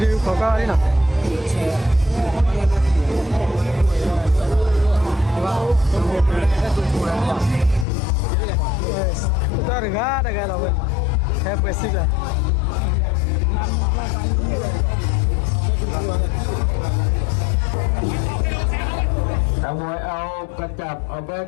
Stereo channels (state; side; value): drops out; right; at 7.9 s